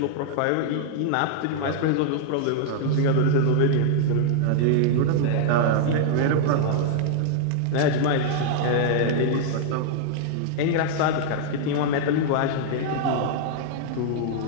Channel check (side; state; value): both; different; correlation -0.01